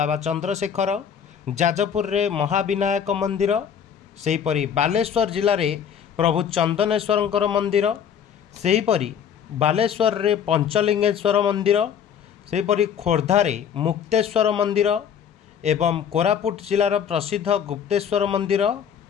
चंद्रशेखर, जाजपुर रे महाविनायक मंदिर, सेहीपरि बालेश्वर जिले में प्रभु चंदनेश्वर मंदिर, सेहीपरि बालेश्वर रे पंचलिंगेश्वर मंदिर, सेहीपरि खोर्धा रे मुक्तेश्वर मंदिर एवं कोरापुट जिलार प्रसिद्ध गुप्तेश्वर मंदिर,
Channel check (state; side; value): quieter; right; 8.1 dB